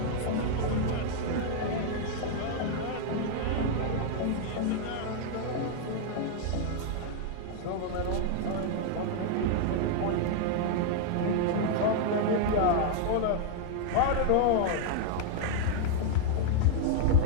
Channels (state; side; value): different; both; correlation 0.00